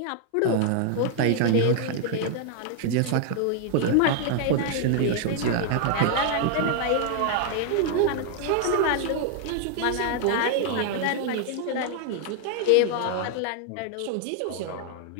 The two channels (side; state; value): both; different; correlation 0.00